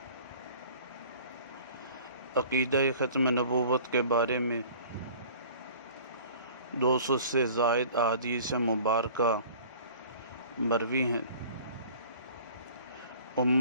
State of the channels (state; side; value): inverted; both; correlation -0.47